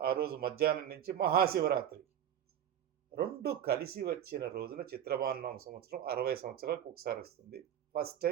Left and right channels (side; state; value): left; quieter; 10.1 dB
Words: రోజు మధ్యాహ్నం నుంచి మహాశివరాత్రి. 2 కలిసి వచ్చిన రోజున చిత్రభానునామ సంవత్సరం 60 సంవత్సరాలకు ఒకసారి వస్తుంది. ఫస్ట్